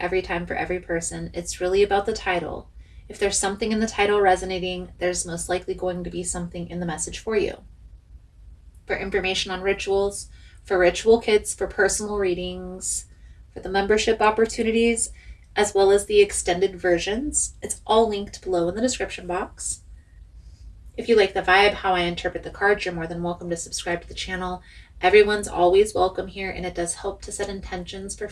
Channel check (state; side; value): identical; both; correlation 1.00